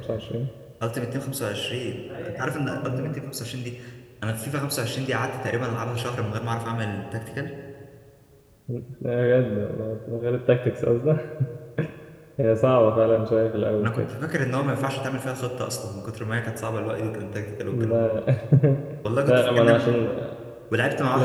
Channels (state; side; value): identical; both; correlation 1.00